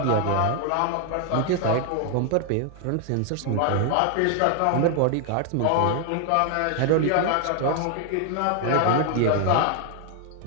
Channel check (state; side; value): different; both; correlation 0.00